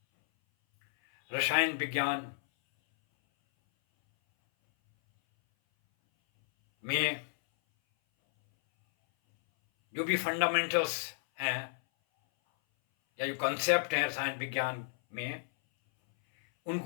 रसायन विज्ञान में जो भी फंडामेंटल्स हैं या जो कंसेप्ट हैं रसायन विज्ञान में,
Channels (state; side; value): silent; right; 57 dB below the other